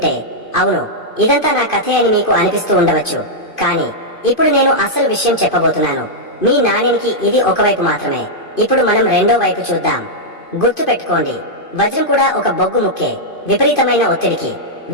అవును, ఇదంతా నా కథే అని మీకు అనిపిస్తూ ఉండవచ్చు. కానీ ఇప్పుడు నేను అసలు విషయం చెప్పబోతున్నాను. మీ నాణ్యానికి ఇది ఒకవైపు మాత్రమే. ఇప్పుడు మనం రెండో వైపు చూద్దాం. గుర్తు పెట్టుకోండి, వజ్రం కూడా ఒక బొగ్గు ముక్కే. విపరీతమైన ఒత్తిడికి,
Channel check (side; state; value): right; late; 2.5 ms